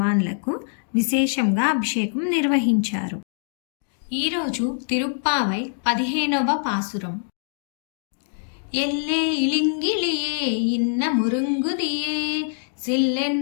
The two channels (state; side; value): silent; right; digital silence